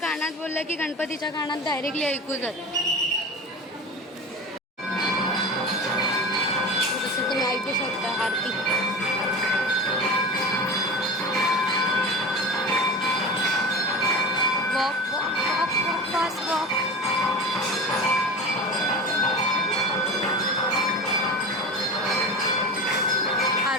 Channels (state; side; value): normal; both; correlation 0.31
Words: बोललं की गणपतीच्या कानात डायरेक्टली ऐकू जात. जसं तुम्ही ऐकू शकता aarti. Walk walk walk walk fast walk.